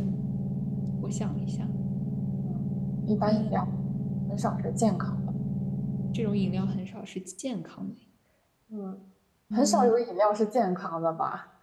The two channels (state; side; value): identical; both; correlation 1.00